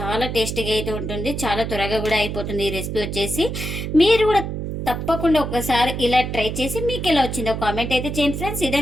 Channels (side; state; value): right; noise; hum, 4 dB below the sound